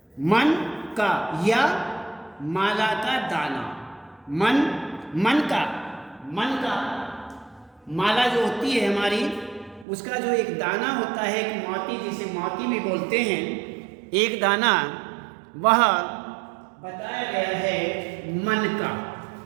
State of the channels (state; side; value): drops out; left; at 9.9 s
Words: मन का या माला का दाना। मन का माला जो होती है हमारी, उसका जो एक दाना होता है, एक मोती जिसे मोती भी बोलते हैं, एक दाना, वह बताया गया है मन का।